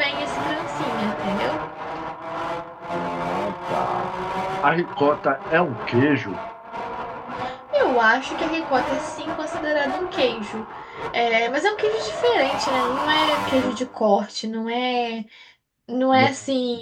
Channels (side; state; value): both; identical; correlation 1.00